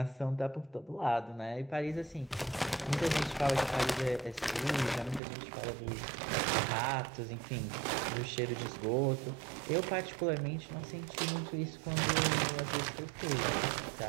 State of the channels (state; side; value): drops out; left; at 5.2 s